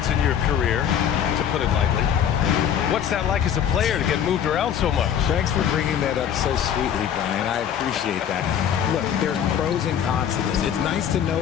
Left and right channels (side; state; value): right; quieter; 9.0 dB